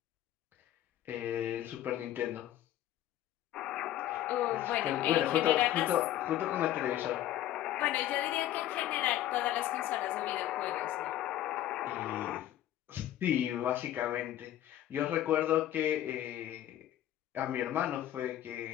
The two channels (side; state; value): right; quieter; 12.8 dB